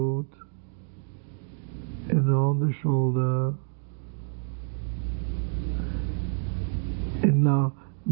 and on the shoulder, now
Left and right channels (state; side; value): silent; left; 60 dB below the other